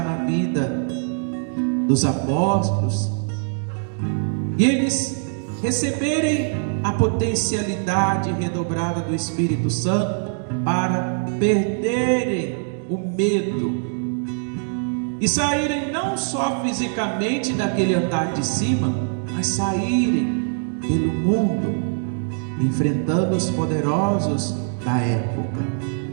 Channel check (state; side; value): silent; left; digital silence